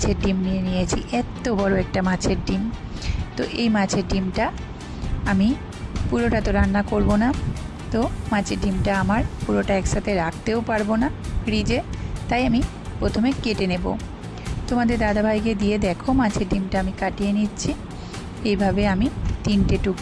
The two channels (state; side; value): identical; both; correlation 1.00